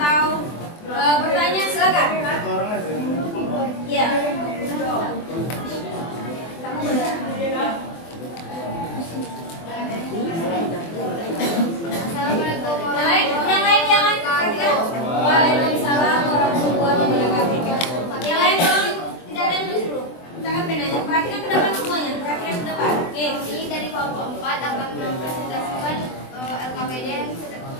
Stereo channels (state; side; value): late; right; 24 ms